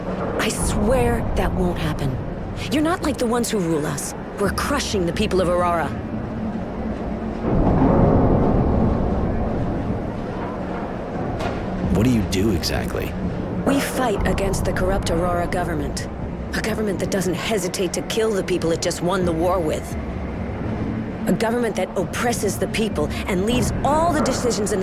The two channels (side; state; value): both; identical; correlation 1.00